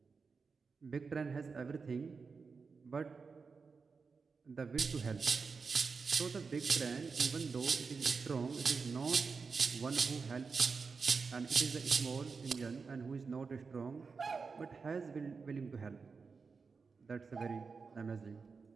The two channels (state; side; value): quieter; left; 4.9 dB